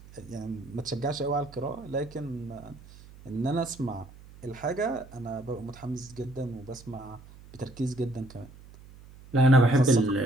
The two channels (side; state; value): right; noise; hum, 20 dB below the sound